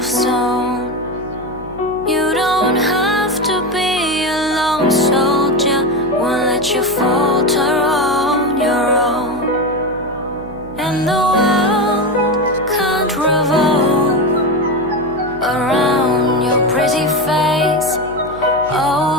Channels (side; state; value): right; noise; hum, 17 dB below the sound